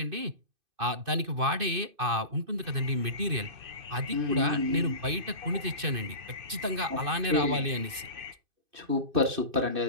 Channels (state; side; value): late; left; 2.5 ms